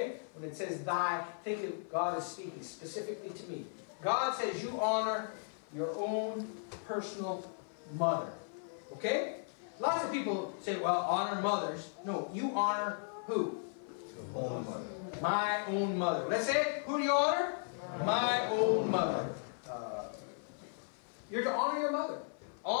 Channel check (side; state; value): right; silent; 54 dB below the other